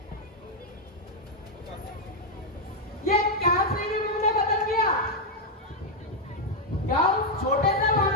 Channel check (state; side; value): normal; both; correlation 0.00